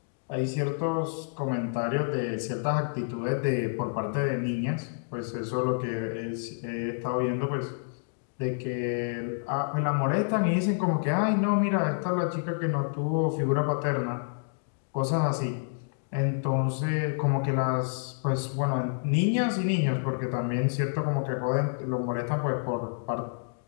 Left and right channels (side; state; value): right; silent; digital silence